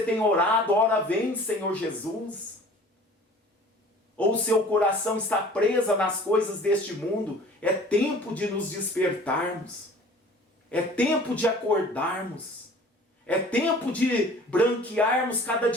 tem orado, ora vem, Senhor Jesus? Ou seu coração está preso nas coisas deste mundo? É tempo de nos despertarmos. É tempo de acordarmos. É tempo de branquearmos cada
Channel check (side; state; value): both; normal; correlation 0.47